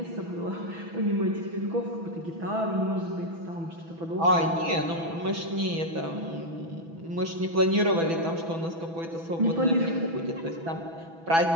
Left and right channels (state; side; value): late; left; 6.1 ms